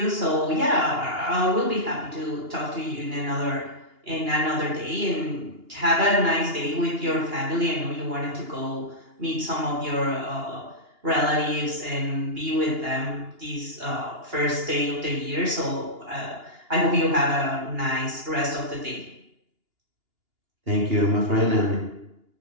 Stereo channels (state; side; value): late; left; 2.8 ms